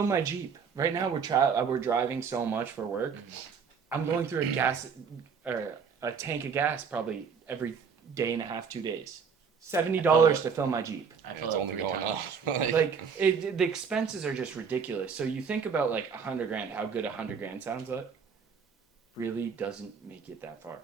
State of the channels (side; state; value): left; quieter; 6.2 dB